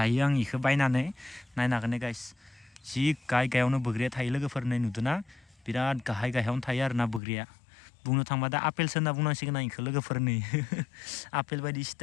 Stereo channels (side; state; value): right; drops out; at 7.2 s